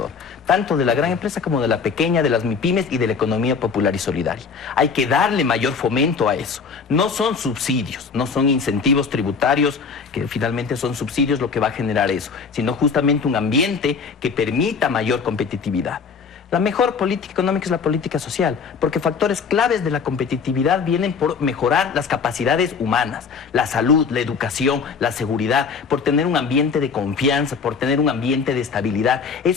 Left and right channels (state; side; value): quieter; right; 5.5 dB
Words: tanto de la gran empresa como de la pequeña, de las MIPYMES y de la economía popular y solidaria. Hay que darle mayor fomento a eso. No son subsidios, no son incentivos tributarios, que finalmente son subsidios lo que va a generar eso, sino justamente un ambiente que permita mayor competitividad. La mejor política económica es la política social, porque factores claves de la competitividad vienen por mejorar las capacidades humanas, la salud, la educación, la seguridad, por tener un ambiente de confianza, por tener un ambiente de estabilidad.